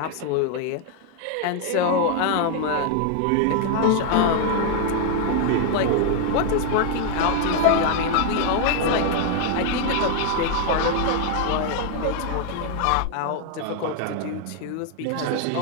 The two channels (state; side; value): different; both; correlation 0.00